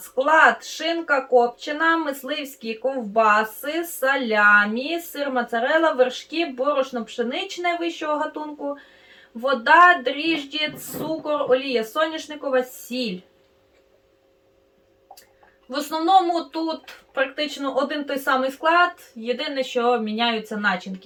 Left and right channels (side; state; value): both; identical; correlation 1.00